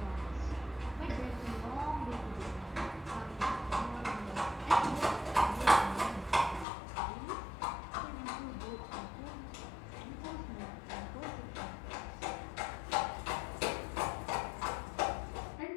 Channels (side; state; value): right; drops out; at 6.7 s